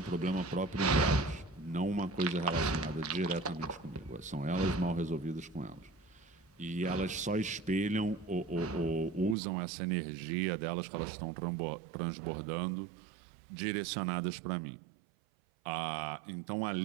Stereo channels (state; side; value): drops out; left; at 9.3 s